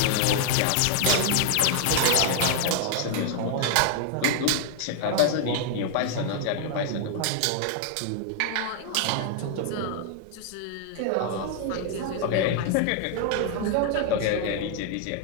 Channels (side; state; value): both; different; correlation 0.00